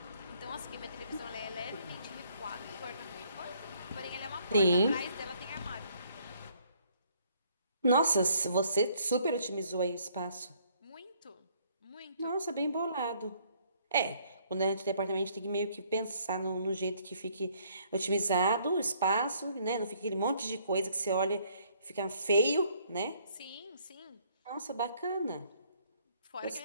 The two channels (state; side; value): inverted; both; correlation -0.65